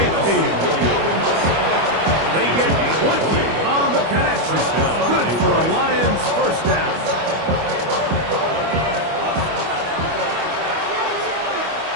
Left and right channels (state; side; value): late; left; 25 ms